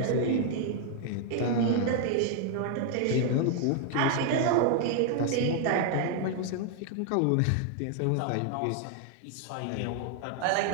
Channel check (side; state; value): both; different; correlation 0.00